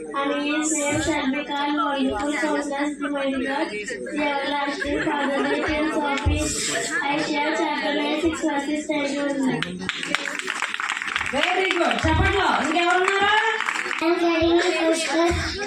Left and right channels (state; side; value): identical; both; correlation 1.00